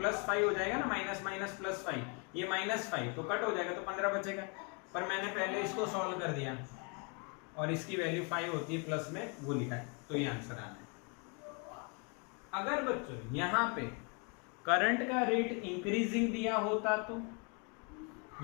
5 हो जाएगा ना, माइनस माइनस प्लस 5, ये -5 तो कट हो जाएगा, तो 15 बचेगा। पर मैंने पहले इसको सॉल्व कर दिया और इसकी वैल्यू 5 होती है प्लस में, वो लिखा है, तो ये आंसर आना है। अगर बच्चों यहाँ पे करंट का रेट इंक्रीजिंग दिया होता तो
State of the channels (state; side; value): quieter; right; 34.7 dB